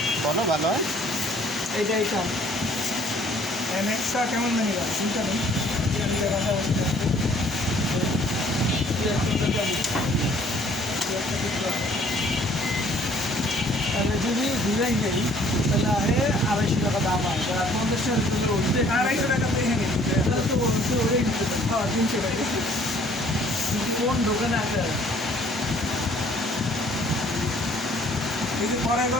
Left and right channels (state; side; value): normal; both; correlation 0.58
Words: বলো ভালো হয় এইটা নেক্সটটা কেমন জানি না চিন্তা নেই এটা নিলে কথা বলতে তাহলে যদি ডিজাইন নেই তাহলে আরে 250 টাকা দাম হয় 50 টাকা দিলে উঠতে 250 টাকা তো এখানে তাহলে তো বলতে ওটাই নিতে পারে। হ্যাঁ 300 টাকা কোন দোকানে আছে এই যে পরে